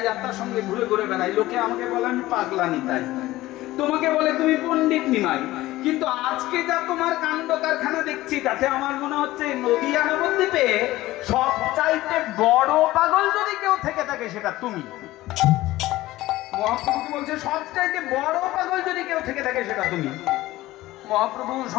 যাত্রার সঙ্গে ঘুরে ঘুরে বেড়াই, লোকে আমাকে বলে আমি পাগলা নিতাই। তোমাকে বলে তুমি পণ্ডিত নিমাই। কিন্তু আজকে যা তোমার কাণ্ড কারখানা দেখছি, তাতে আমার মনে হচ্ছে নদিয়া নবদ্বীপে সবচাইতে বড় পাগল যদি কেউ থেকে থাকে সেটা তুমি। মহাপ্রভু কি বলছে? সবচাইতে বড় পাগল যদি কেউ থেকে থাকে সেটা তুমি। মহাপ্রভু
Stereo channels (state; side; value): quieter; right; 17.1 dB